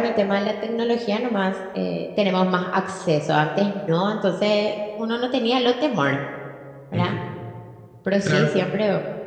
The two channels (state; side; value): identical; both; correlation 1.00